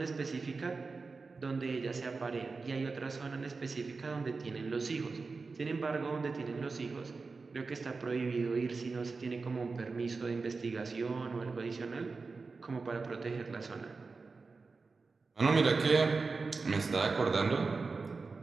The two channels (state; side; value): quieter; left; 4.2 dB